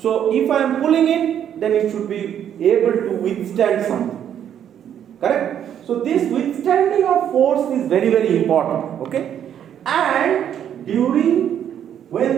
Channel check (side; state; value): left; quieter; 9.6 dB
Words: if I am pulling it, then it should be able to withstand something, correct? So this withstanding of force is very, very important, okay? And during